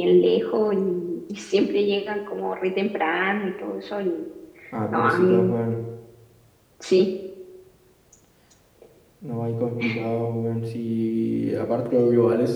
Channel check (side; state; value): both; identical; correlation 1.00